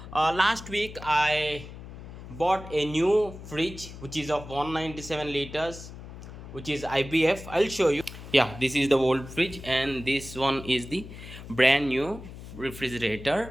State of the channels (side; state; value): left; noise; hum, 13 dB below the sound